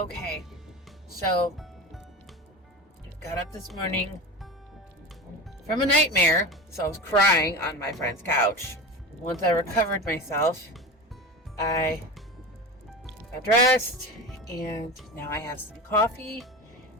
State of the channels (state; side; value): normal; both; correlation 0.27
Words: so got up this morning from a nightmare, so I was crying on my friend's couch. Once I recovered myself, I got dressed, and now I have some coffee,